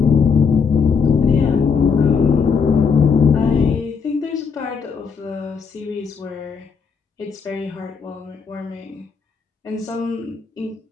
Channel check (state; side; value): quieter; right; 5.8 dB